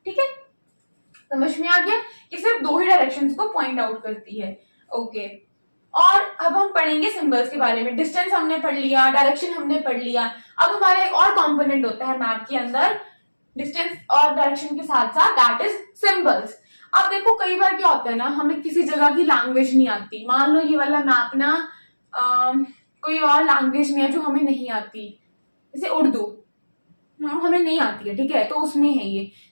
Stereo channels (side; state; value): both; inverted; correlation -1.00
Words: ठीक है। समझ में आ गया? ये सिर्फ दो ही डायरेक्शंस को पॉइंट आउट करती है, ओके। और अब हम पढ़ेंगे सिंबल्स के बारे में। डिस्टेंस हमने पढ़ लिया, डायरेक्शन हमने पढ़ लिया। अब हमारा एक और कंपोनेंट होता है मैप के अंदर, डिस्टेंस और डायरेक्शन के साथ साथ, दैट इज सिंबल्स। अब देखो कई बार क्या होता है ना, हमें किसी जगह की लैंग्वेज नहीं आती। मान लो ये वाला मैप ना कोई और लैंग्वेज में है जो हमें नहीं आती, जैसे उर्दू हमें नहीं आती है, ठीक है, तो उसमें है ये,